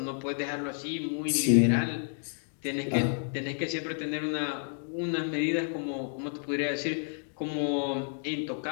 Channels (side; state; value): right; silent; 57 dB below the other